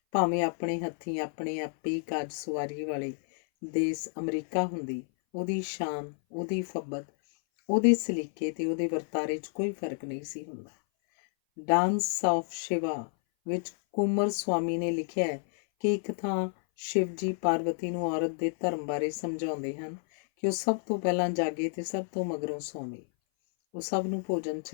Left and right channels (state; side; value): silent; right; 58 dB below the other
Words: ਭਾਵੇਂ ਆਪਣੇ ਹੱਥੀਂ ਆਪਣੇ ਆਪੇ ਕਾਜ ਸਵਾਰੀ ਵਾਲੇ ਦੇਸ ਅਮਰੀਕਾ ਹੁੰਦੀ, ਉਹਦੀ ਸ਼ਾਨ, ਉਹਦੀ ਫੱਬਤ, ਉਹਦੇ ਸਲੀਕੇ ਤੇ ਉਹਦੇ ਵਰਤਾਰੇ 'ਚ ਕੋਈ ਫਰਕ ਨਹੀਂ ਸੀ ਹੁੰਦਾ। ਡਾਂਸ ਆਫ ਸ਼ਿਵਾ ਵਿੱਚ ਕੁਮਰ ਸਵਾਮੀ ਨੇ ਲਿਖਿਆ ਹੈ ਕਿ ਇੱਕ ਥਾਂ ਸ਼ਿਵ ਜੀ ਪਾਰਵਤੀ ਨੂੰ ਔਰਤ ਦੇ ਧਰਮ ਬਾਰੇ ਸਮਝਾਉਂਦੇ ਹਨ ਕਿ ਉਹ ਸਭ ਤੋਂ ਪਹਿਲਾਂ ਜਾਗੇ ਤੇ ਸਭ ਤੋਂ ਮਗਰੋਂ ਸੌਵੇ। ਉਹ ਸਭ ਨੂੰ ਭੋਜਨ